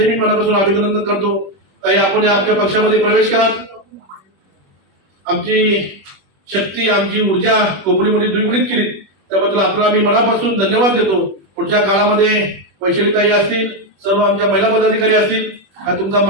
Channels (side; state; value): left; late; 21 ms